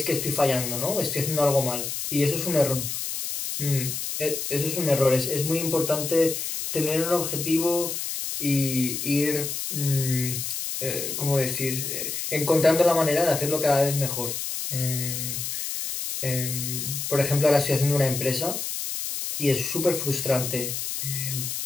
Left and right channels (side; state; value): left; noise; hiss, 4 dB below the sound